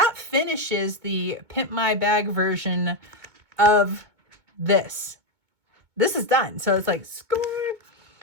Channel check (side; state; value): left; late; 2.2 ms